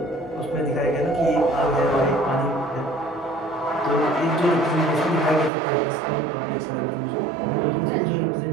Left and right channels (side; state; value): left; drops out; at 5.5 s